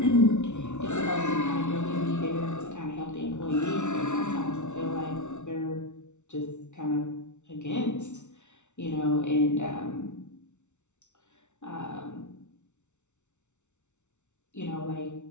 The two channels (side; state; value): right; late; 0.83 ms